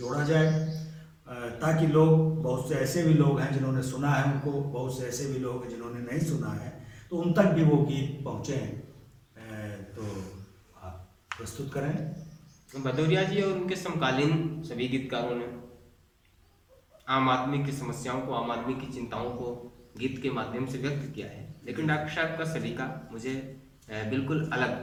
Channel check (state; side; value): identical; both; correlation 1.00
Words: जाए, ताकि लोग, बहुत से ऐसे भी लोग हैं जिन्होंने सुना है उनको, बहुत से ऐसे भी लोग हैं जिन्होंने नहीं सुना है, तो उन तक भी वो गीत पहुँचे। तो आप प्रस्तुत करें। भदौरिया जी और उनके समकालीन सभी गीतकारों ने आम आदमी की समस्याओं को, आम आदमी की चिंताओं को गीत के माध्यम से व्यक्त किया है। लेकिन डॉक्टर साहब का सलीका मुझे बिल्कुल